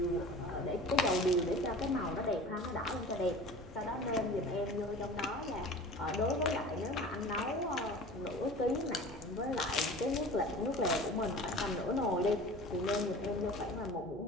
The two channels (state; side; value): normal; both; correlation 0.40